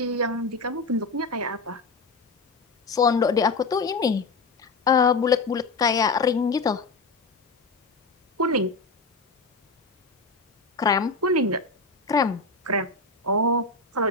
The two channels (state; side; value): quieter; right; 3.7 dB